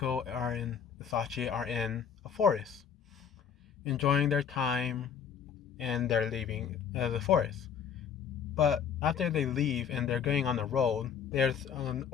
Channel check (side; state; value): right; quieter; 7.6 dB